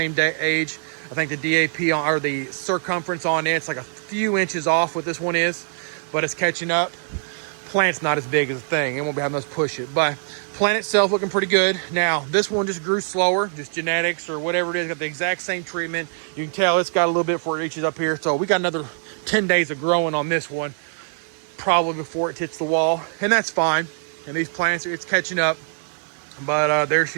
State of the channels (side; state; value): left; silent; digital silence